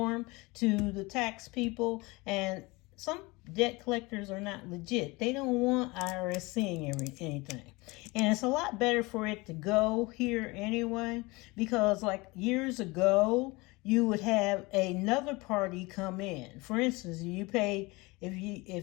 to the tax people, and some debt collectors are not legit. They don't want IRS seeing anything. And it's a lot better for it to go here anyway, because like years ago, you would have another party come in. For instance, you pay,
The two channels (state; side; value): quieter; right; 24.0 dB